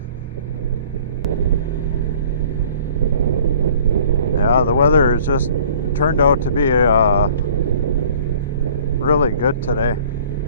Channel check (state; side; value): inverted; both; correlation -0.51